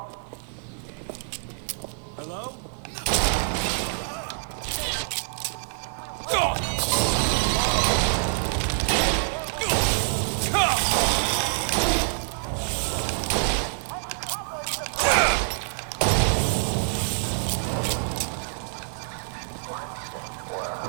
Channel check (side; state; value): left; silent; digital silence